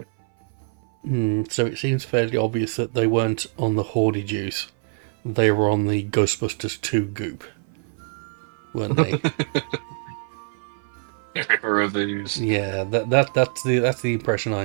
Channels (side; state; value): left; silent; 57 dB below the other